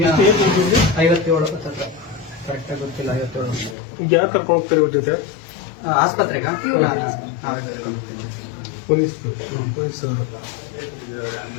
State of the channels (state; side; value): drops out; right; at 3.8 s